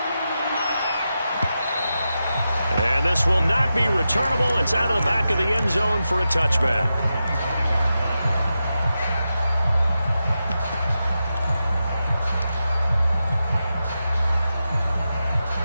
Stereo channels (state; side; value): inverted; both; correlation -0.90